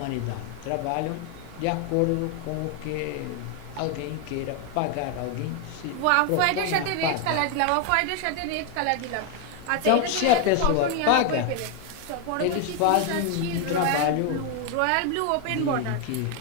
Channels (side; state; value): both; different; correlation 0.01